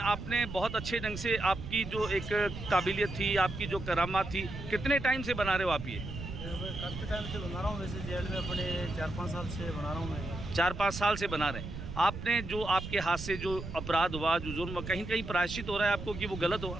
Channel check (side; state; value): right; noise; rumble, 8 dB below the sound